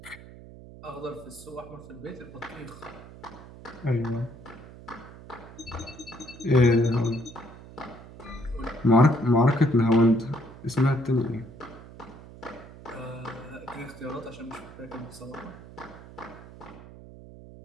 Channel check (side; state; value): right; noise; hum, 17 dB below the sound